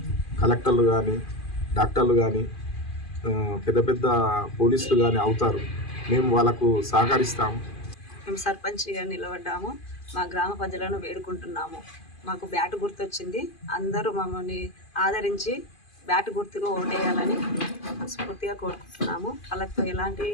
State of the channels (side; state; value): right; late; 2.5 ms